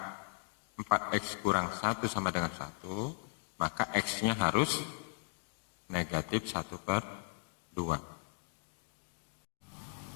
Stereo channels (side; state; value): right; silent; digital silence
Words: 4x kurang 1 sama dengan 1, maka X-nya harus negatif 1/2.